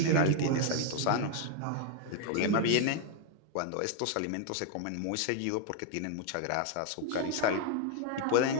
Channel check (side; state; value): both; different; correlation 0.00